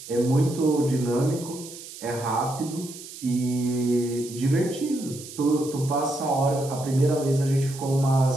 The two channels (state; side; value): noise; right; hiss, 14 dB below the sound